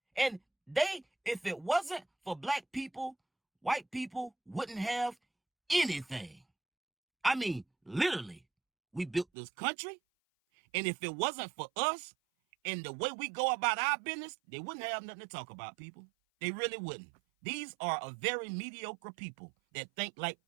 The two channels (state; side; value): drops out; left; at 9.2 s